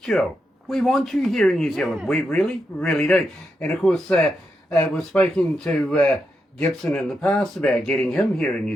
We want you here in New Zealand. We really, really do. And, of course, we've spoken to Gibson in the past about getting him here in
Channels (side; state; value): both; normal; correlation 0.85